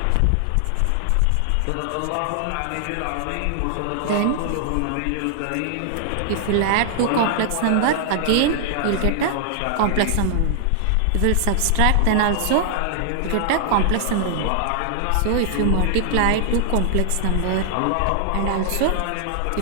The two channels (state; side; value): different; both; correlation 0.00